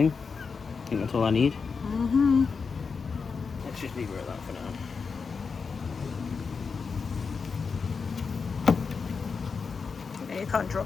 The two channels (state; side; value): quieter; right; 5.2 dB